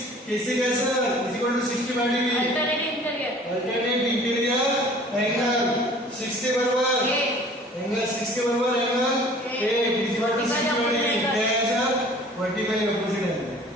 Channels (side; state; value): both; normal; correlation 0.49